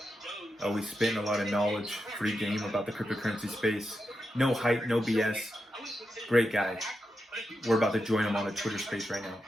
Always spitting a lot of knowledge, free game about the cryptocurrency space. No hype, no BS. Great guy. We're about to join him on a Twitter space right now.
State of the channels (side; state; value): both; normal; correlation 0.87